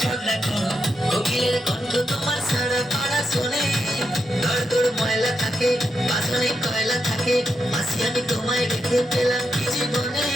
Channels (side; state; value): both; normal; correlation 0.84